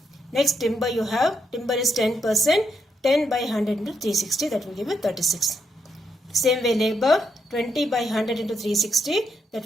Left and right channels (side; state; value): both; normal; correlation 0.80